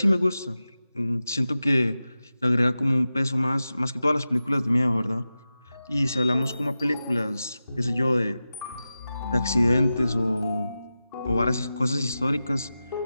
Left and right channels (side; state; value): both; inverted; correlation -0.93